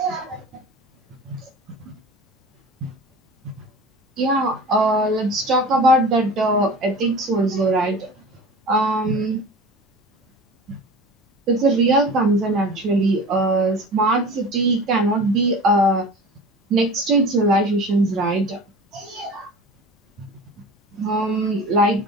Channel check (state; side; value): normal; both; correlation 0.37